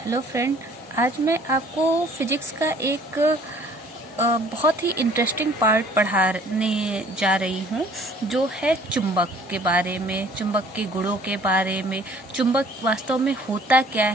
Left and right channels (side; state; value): both; normal; correlation 0.55